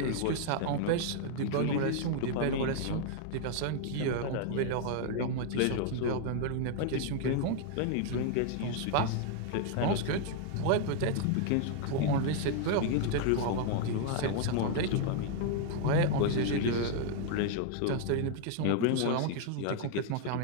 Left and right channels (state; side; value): different; both; correlation 0.00